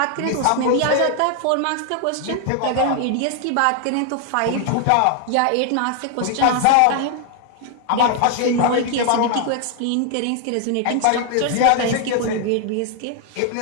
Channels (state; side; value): different; both; correlation 0.00